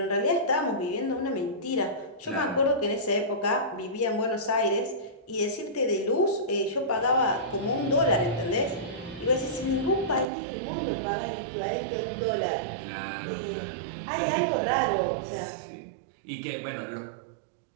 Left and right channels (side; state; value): left; drops out; at 10.2 s